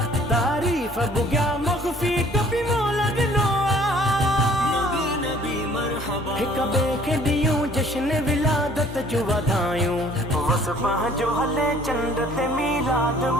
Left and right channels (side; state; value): both; normal; correlation 0.55